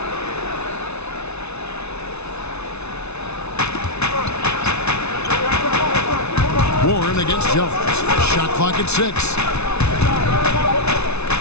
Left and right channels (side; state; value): right; late; 0.81 ms